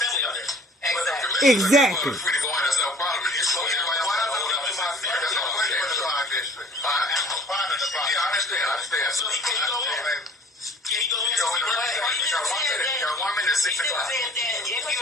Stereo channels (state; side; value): normal; both; correlation 0.50